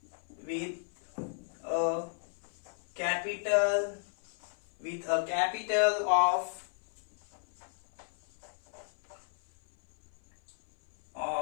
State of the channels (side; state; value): right; silent; 55 dB below the other